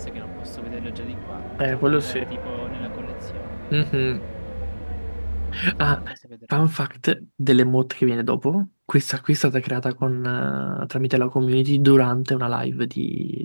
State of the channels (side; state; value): both; inverted; correlation -1.00